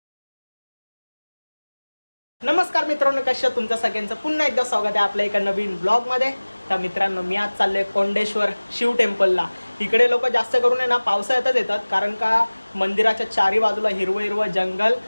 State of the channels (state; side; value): inverted; both; correlation -1.00